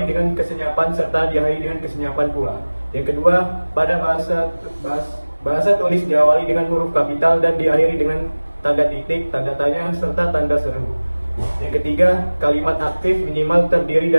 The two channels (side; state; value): both; inverted; correlation -1.00